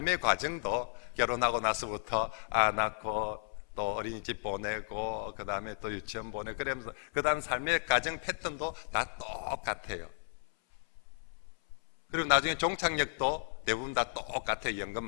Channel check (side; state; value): right; silent; 55 dB below the other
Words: 과정도 결혼하고 나서부터 낳고 또 어린이집 보내고 그 다음에 또 유치원 보내고 그러면서 그 다음 삶의 가정 패턴도 다 똑같아요. 그리고 나중에 종착역도 대부분 다 똑같아요. 연금